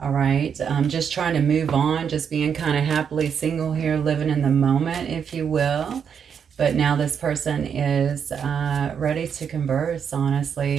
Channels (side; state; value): left; quieter; 7.4 dB